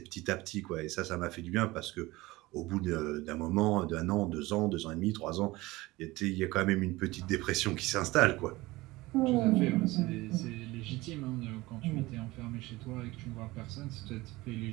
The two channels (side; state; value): left; quieter; 20.1 dB